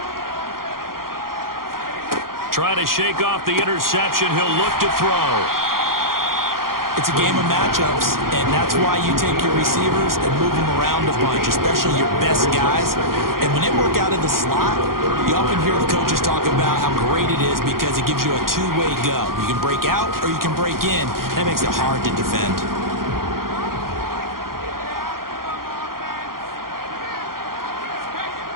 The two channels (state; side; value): late; left; 0.92 ms